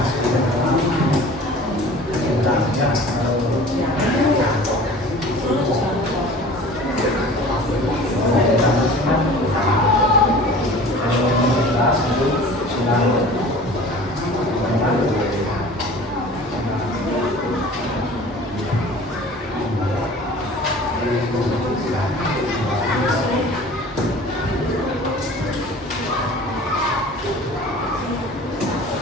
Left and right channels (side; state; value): both; normal; correlation 0.43